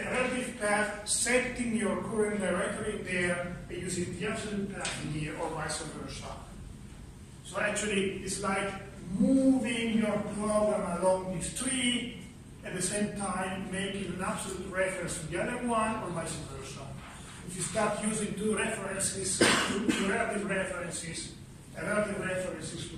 relative path, setting your current directory there, and using the absolute path in here, or vice versa. So actually, it's like moving your program along this tree, at the same time making an absolute reference to the other one, or vice versa. If you start using two references, two relative references, relative references to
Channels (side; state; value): both; identical; correlation 1.00